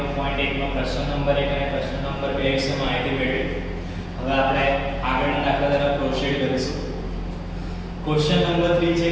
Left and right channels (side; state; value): both; identical; correlation 1.00